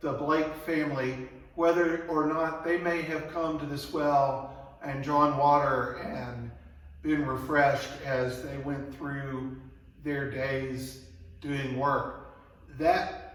the Blake family, whether or not they may have come to this well and drawn water and been refreshed as they went through their days doing work.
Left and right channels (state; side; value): identical; both; correlation 1.00